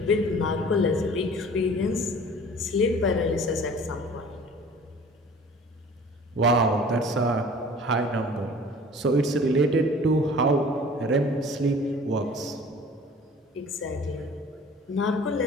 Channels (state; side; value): normal; both; correlation 0.47